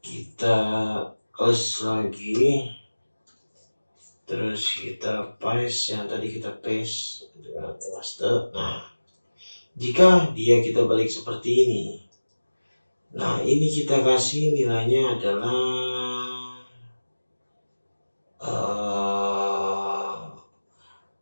kita close lagi, terus kita paste yang tadi kita paste dengan master. Nah, jika kita balik seperti ini, nah ini kita kasih nilainya adalah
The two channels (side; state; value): both; inverted; correlation -1.00